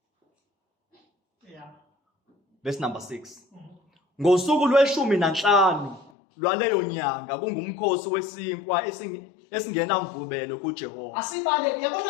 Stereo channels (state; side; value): drops out; right; at 6.1 s